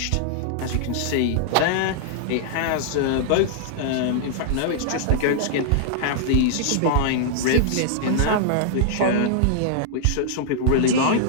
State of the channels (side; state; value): both; different; correlation -0.01